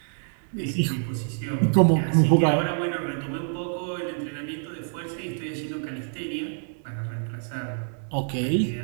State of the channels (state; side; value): silent; left; digital silence